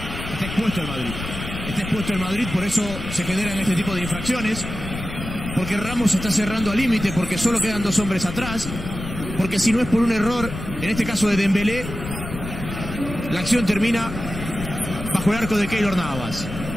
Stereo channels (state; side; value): noise; left; rumble, 8 dB below the sound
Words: Está expuesto el Madrid. Está expuesto el Madrid, por eso se generan este tipo de infracciones. Porque Ramos está cerrando al límite, porque solo quedan 2 hombres atrás. Porque si no es por un error, en este caso de Dembélé, la acción termina bajo el arco de Keylor Navas.